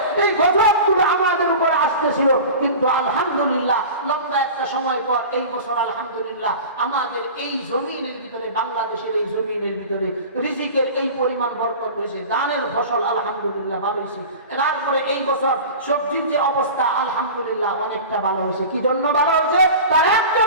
এই গজবগুলো আমাদের উপরে আসতেছিল, কিন্তু আলহামদুলিল্লাহ লম্বা একটা সময় পর এই বছর আলহামদুলিল্লাহ আমাদের এই জমিনের ভিতরে, বাংলাদেশের এই জমিনের ভিতরে রিজিকের এই পরিমাণ বরকত হয়েছে, দানের ফসল আলহামদুলিল্লাহ ভালো হয়েছে। তারপরে এই বছর সবজির যে অবস্থা আলহামদুলিল্লাহ অনেকটা ভালো হয়েছে। কি জন্য ভালো হয়েছে? তার একটা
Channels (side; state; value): both; inverted; correlation -0.35